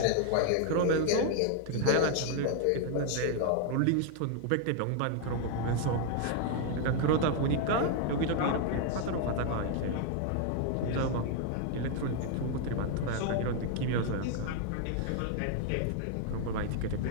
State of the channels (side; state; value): both; different; correlation 0.00